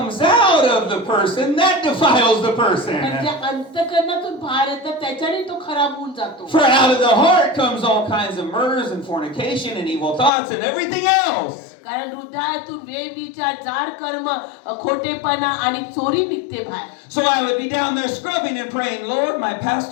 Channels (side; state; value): right; drops out; at 10.3 s